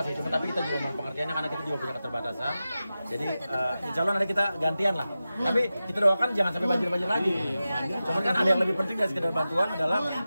sih, cuma tapi kita juga mohon pengertiannya karena kita juga punya keterbatasan. Jadi insya Allah nanti kita gantian lah. Tapi kita doakan jangan sampai banjir-banjir lagi. Cuman kan ada yang lebih penting dari sekedar bantuan adalah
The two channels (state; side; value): inverted; both; correlation -0.94